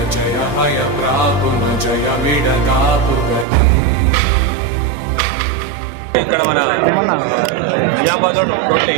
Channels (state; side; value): drops out; left; at 3.5 s